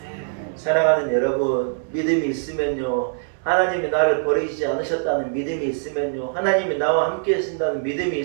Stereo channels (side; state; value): left; silent; 64 dB below the other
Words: 사랑하는 여러분, 믿음이 있으면요, 하나님이 나를 버리지 않으셨다는 믿음이 있으면요, 하나님이 나와 함께 하신다는 믿음이